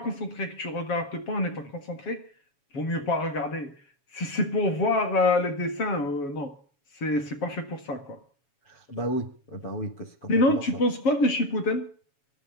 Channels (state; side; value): late; right; 7.2 ms